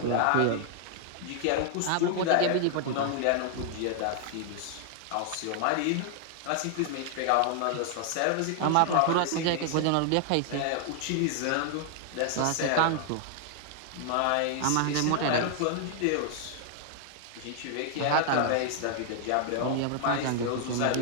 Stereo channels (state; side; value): different; both; correlation 0.00